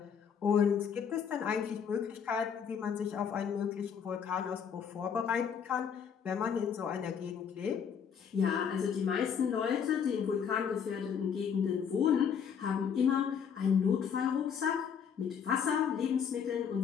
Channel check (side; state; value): right; quieter; 7.3 dB